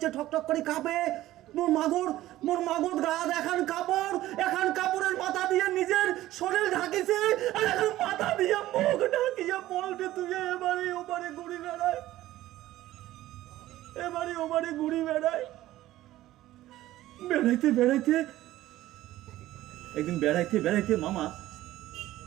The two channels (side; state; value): left; quieter; 15.2 dB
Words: ঠক ঠক করে কাঁপে, মোর মাগর গা দেখান কাপড়ের মাথা দিয়ে নিজের শরীর ঢাকিছে, আর এখন মাথা দিয়ে মুখ ঢাকিয়া পলটে তুই এবারে ওবারে ঘুরি বেড়ায়, বেড়াইতে একদিন বেড়াইতে মামা